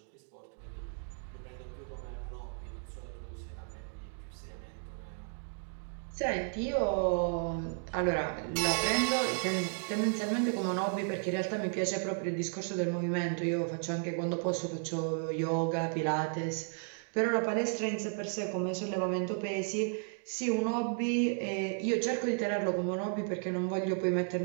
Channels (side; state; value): left; silent; 55 dB below the other